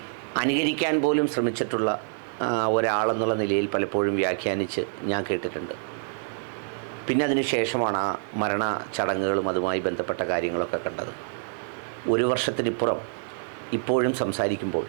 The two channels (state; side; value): silent; left; digital silence